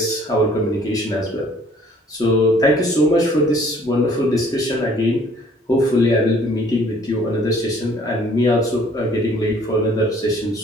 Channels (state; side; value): normal; both; correlation 0.57